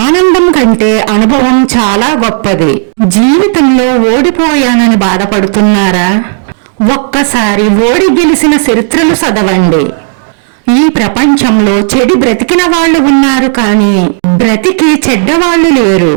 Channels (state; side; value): silent; left; 60 dB below the other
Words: ఆనందం కంటే అనుభవం చాలా గొప్పది. జీవితంలో ఓడిపోయానని బాధపడుతున్నారా? ఒక్కసారి ఓడి గెలిచిన చరిత్రలు చదవండి. ఈ ప్రపంచంలో చెడు బ్రతికిన వాళ్ళు ఉన్నారు, కానీ బ్రతికి చెడ్డవాళ్ళు లేరు.